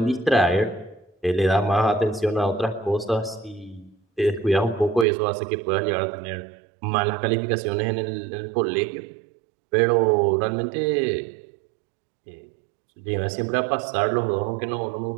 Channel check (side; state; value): left; drops out; at 5.1 s